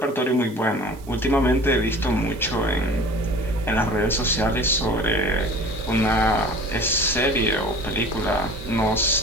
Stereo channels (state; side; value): noise; right; hiss, 24 dB below the sound